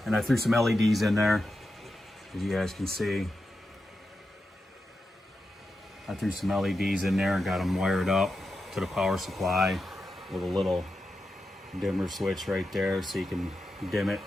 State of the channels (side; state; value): both; normal; correlation 0.89